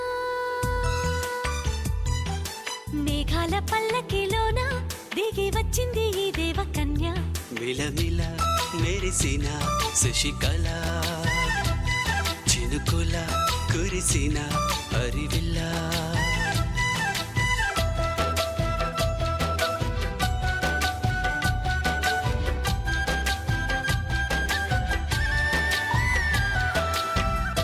మేఘాల పల్లకిలోనా దిగి వచ్చింది ఈ దేవకన్య. మిలమిల మెరిసిన శశికళ, చినుకుల కురిసిన హరివిల్లా.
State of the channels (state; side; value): identical; both; correlation 1.00